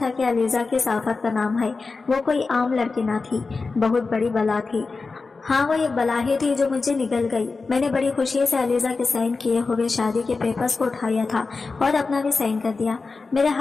کہ علیزہ کس آفت کا نام ہے۔ وہ کوئی عام لڑکی نہ تھی، بہت بڑی بلا تھی۔ ہاں، وہ ایک بلا ہی تھی جو مجھے نگل گئی۔ میں نے بڑی خوشی سے علیزہ کے سائن کیے ہوئے شادی کے پیپرز کو اٹھایا تھا اور اپنا بھی سائن کر دیا۔ میرے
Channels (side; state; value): right; quieter; 4.1 dB